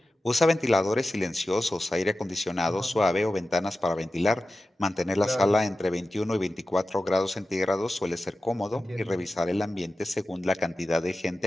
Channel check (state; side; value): normal; both; correlation 0.93